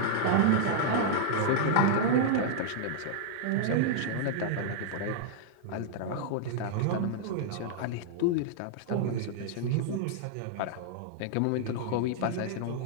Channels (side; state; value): both; different; correlation -0.01